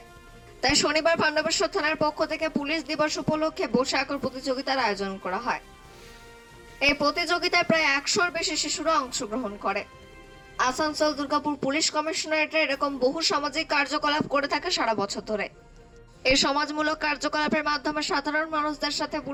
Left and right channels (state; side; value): identical; both; correlation 1.00